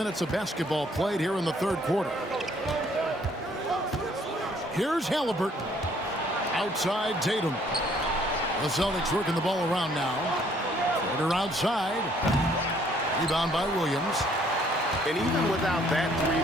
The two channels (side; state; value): both; normal; correlation 0.63